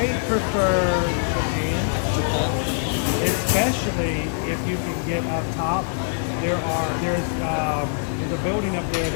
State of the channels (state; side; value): silent; right; digital silence